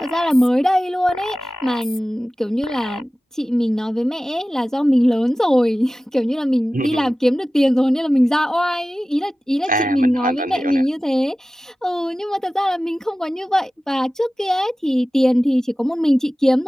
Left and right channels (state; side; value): normal; both; correlation 0.96